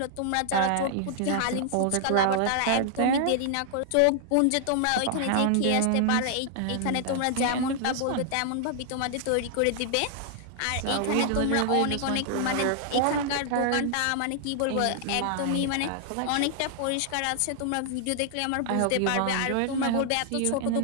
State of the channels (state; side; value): different; both; correlation 0.00